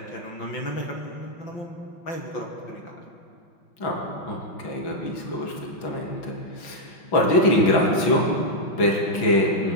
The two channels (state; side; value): late; right; 6.0 ms